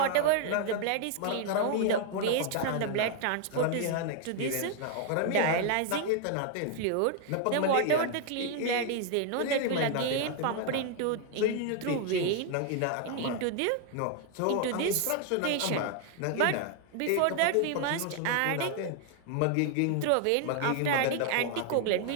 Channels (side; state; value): both; different; correlation 0.00